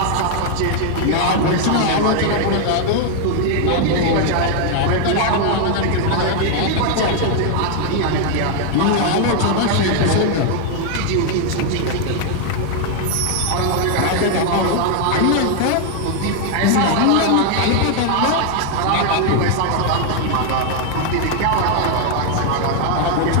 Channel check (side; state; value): both; different; correlation 0.00